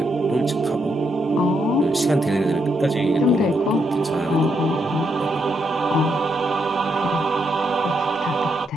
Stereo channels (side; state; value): both; normal; correlation 0.79